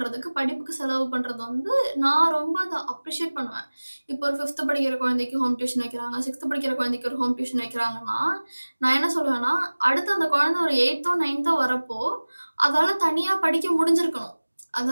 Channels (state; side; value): inverted; both; correlation -1.00